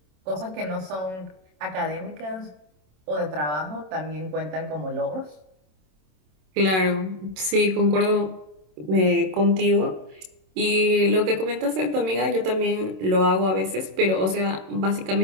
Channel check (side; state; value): left; late; 27 ms